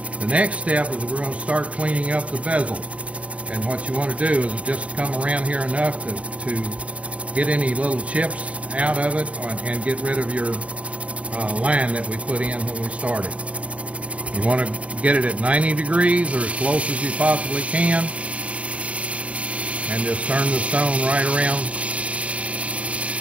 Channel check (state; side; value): late; left; 0.065 ms